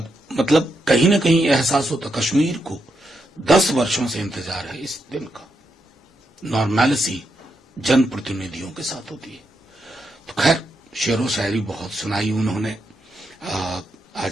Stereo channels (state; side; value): normal; both; correlation 0.83